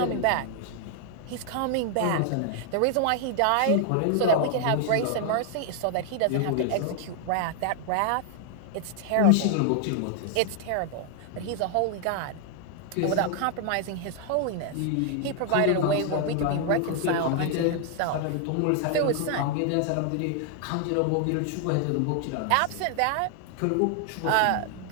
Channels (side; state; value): both; different; correlation 0.00